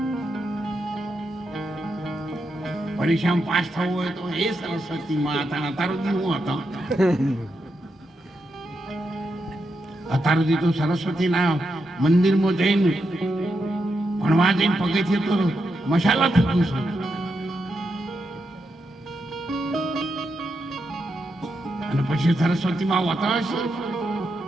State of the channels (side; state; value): both; normal; correlation 0.84